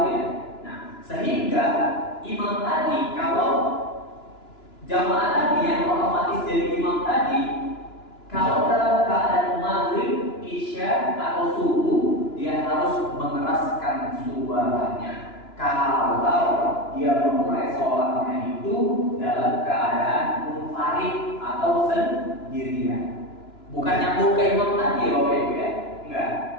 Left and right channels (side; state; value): right; late; 2.9 ms